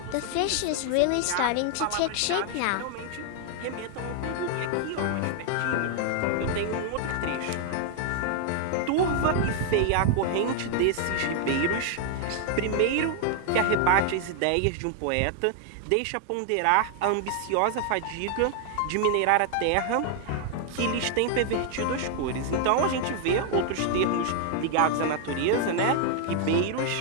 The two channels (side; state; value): both; different; correlation 0.00